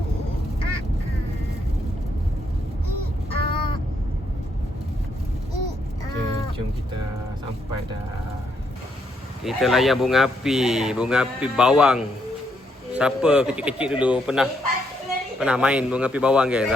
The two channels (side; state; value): both; normal; correlation 0.76